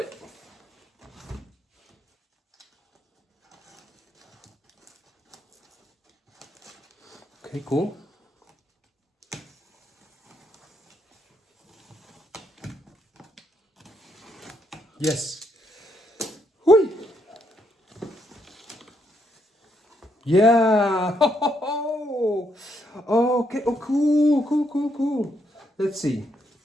Okay, cool. Yes. Hui. Yeah. Okay. Oh, cool, cool, cool, cool. Let's see.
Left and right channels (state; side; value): normal; both; correlation 0.76